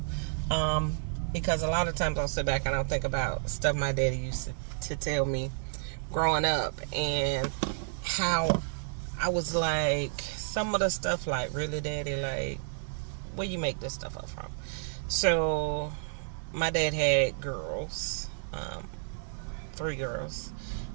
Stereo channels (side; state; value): left; silent; 57 dB below the other